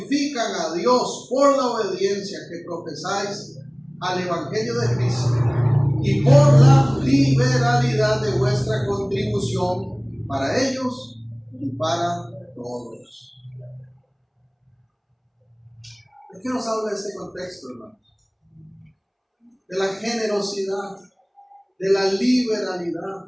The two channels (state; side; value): identical; both; correlation 1.00